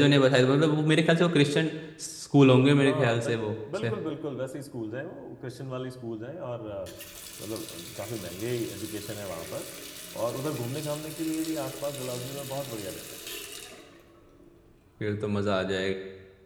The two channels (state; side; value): identical; both; correlation 1.00